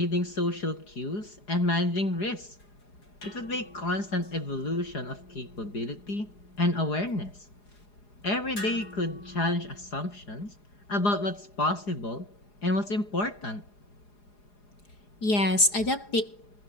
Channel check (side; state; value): right; late; 4.8 ms